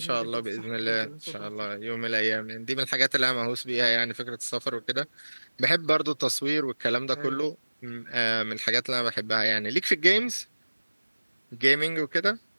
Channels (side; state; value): both; inverted; correlation -1.00